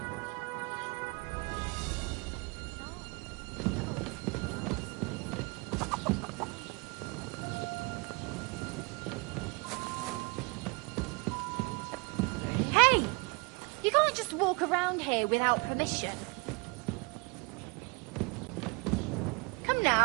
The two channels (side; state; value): left; quieter; 30.1 dB